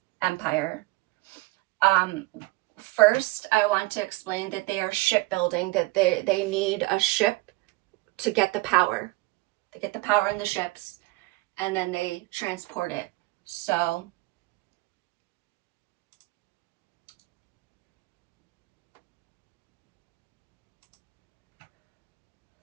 empire. First, I want to explain that they are shipbuilding, that they need a ship to get the power. They get the power in the ships, and then they transport it. So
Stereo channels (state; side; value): quieter; left; 22.3 dB